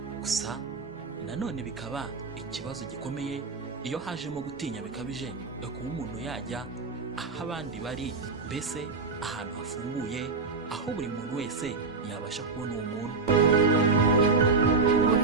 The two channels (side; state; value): left; quieter; 4.3 dB